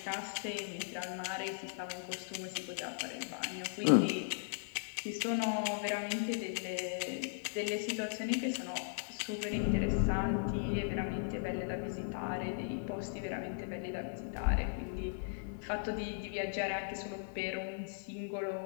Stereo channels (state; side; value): silent; right; 53 dB below the other